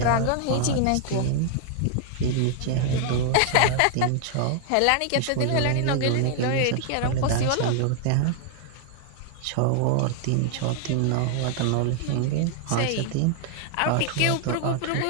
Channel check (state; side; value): different; both; correlation 0.00